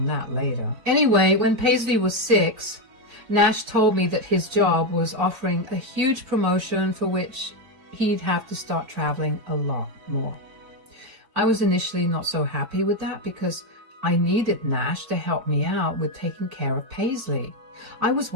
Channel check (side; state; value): left; late; 4.6 ms